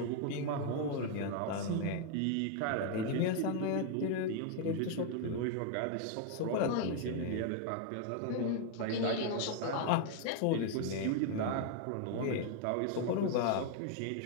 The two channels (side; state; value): both; different; correlation 0.00